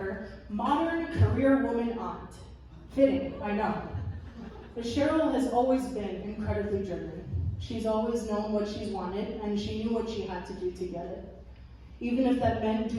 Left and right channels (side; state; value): both; identical; correlation 1.00